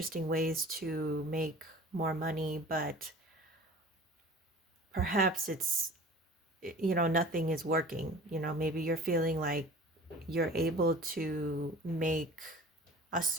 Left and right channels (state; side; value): normal; both; correlation 0.42